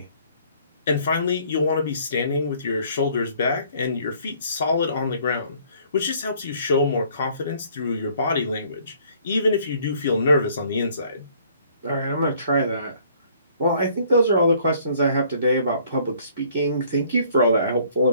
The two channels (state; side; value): inverted; both; correlation -0.60